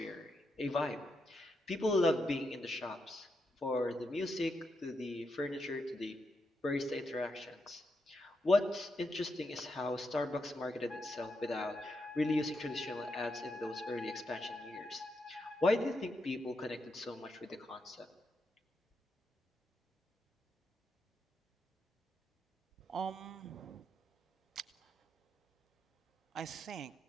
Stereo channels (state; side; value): normal; both; correlation 0.83